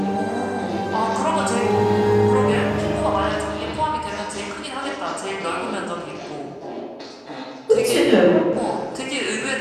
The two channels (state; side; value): identical; both; correlation 1.00